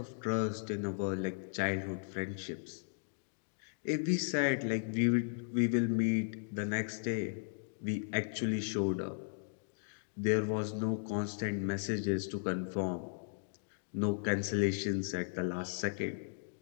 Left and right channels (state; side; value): silent; right; digital silence